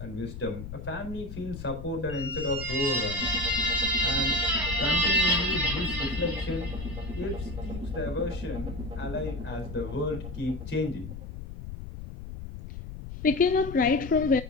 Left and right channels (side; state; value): left; noise; rumble, 10 dB below the sound